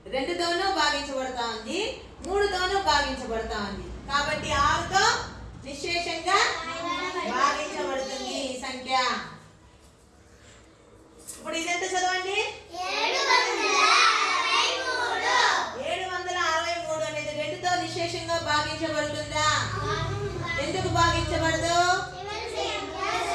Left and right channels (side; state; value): both; identical; correlation 1.00